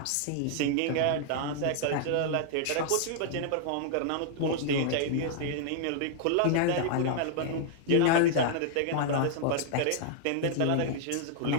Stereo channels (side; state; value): both; different; correlation -0.01